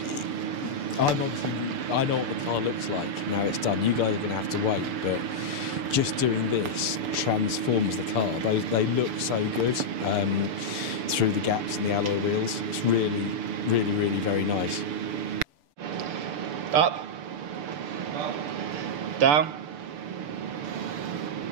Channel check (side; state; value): left; late; 6.8 ms